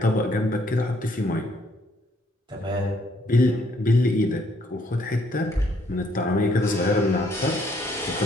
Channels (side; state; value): both; normal; correlation 0.67